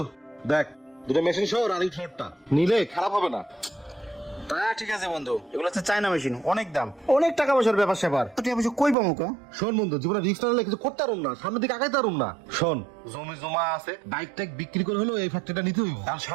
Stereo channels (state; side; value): drops out; left; at 9.0 s